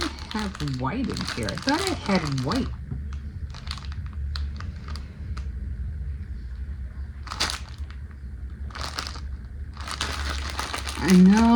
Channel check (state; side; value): identical; both; correlation 1.00